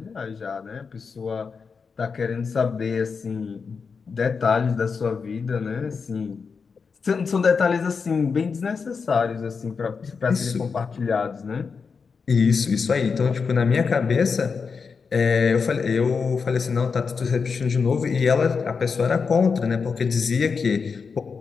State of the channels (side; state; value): right; quieter; 5.4 dB